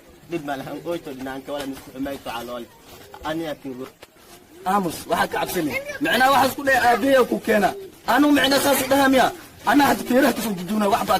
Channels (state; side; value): identical; both; correlation 1.00